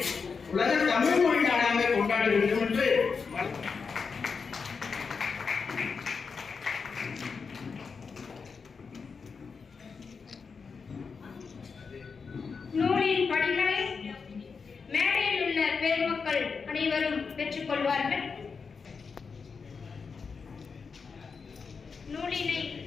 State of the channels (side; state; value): right; quieter; 5.3 dB